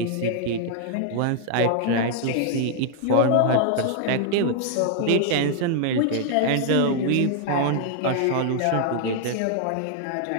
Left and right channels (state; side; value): different; both; correlation 0.00